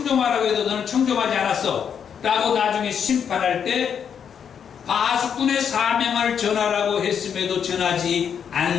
해도 너는 청종하지 않았어? 라고 나중에 심판할 때 파수꾼의 사명을 전하라고 했음에도 전하지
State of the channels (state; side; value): quieter; right; 7.7 dB